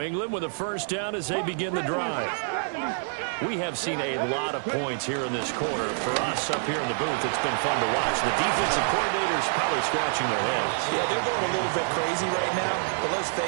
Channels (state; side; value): silent; left; digital silence